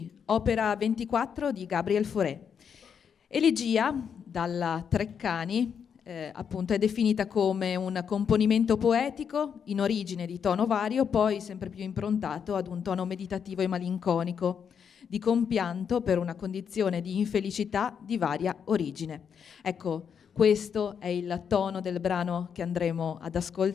opera 24 di Gabriel Fauré. Elegia, dalla Treccani, appunto è definita come un componimento poetico in origine di tono vario, poi sempre più improntato ad un tono meditativo e malinconico, di compianto per una condizione di infelicità di varia origine. Ecco, questo è il tono del brano che andremo ad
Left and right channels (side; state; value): right; quieter; 7.3 dB